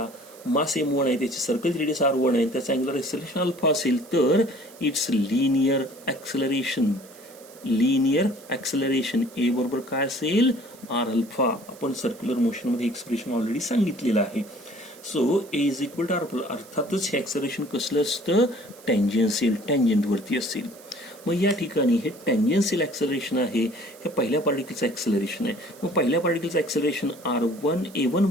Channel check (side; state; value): right; noise; hiss, 22 dB below the sound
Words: मास m1 आहे, त्याची सर्कल रेडियस r1 आहे, त्याचा अँग्युलर ॲक्सेलरेशन अल्फा असेल, तर इट्स लिनियर ॲक्सेलरेशन ए बरोबर काय असेल, आर अल्फा. आपण सर्क्युलर मोशन मध्ये एक्सप्रेशन ऑलरेडी सांगितलेलं आहे. So A is equal to R. अर्थातच हे ॲक्सेलरेशन कसलं असतं, टँजेन्शियल, टँजेंट वरती असेल. मग या ठिकाणी हे टँजेन्शियल ॲक्सेलरेशन आहे, हे पहिल्या पार्टिकलचं ॲक्सेलरेशन आहे. मग पहिल्या पार्टिकलचं ॲक्सेलरेशन r1 a1